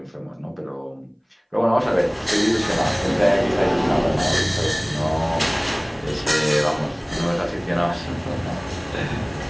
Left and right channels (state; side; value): identical; both; correlation 1.00